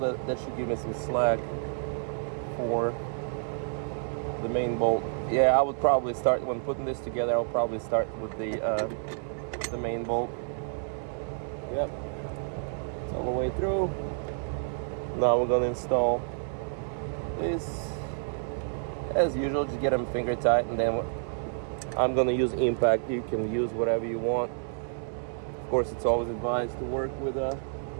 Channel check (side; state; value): left; silent; 58 dB below the other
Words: That should give me some slack for the main bolt. Yeah, I would probably start when putting this together. I'll probably start with the main bolt. Yep, it's all the way through. Now we're gonna install this. As usual, just get them finger tight, and then I'm gonna use impact. You can use whatever you want. Of course, it's always advised to work with